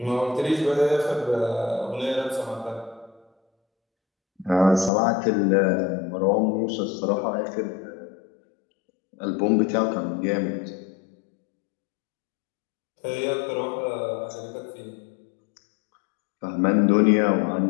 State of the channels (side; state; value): right; drops out; at 4.9 s